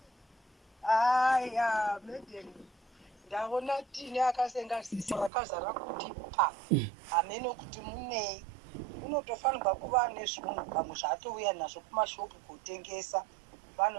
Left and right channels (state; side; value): drops out; left; at 5.3 s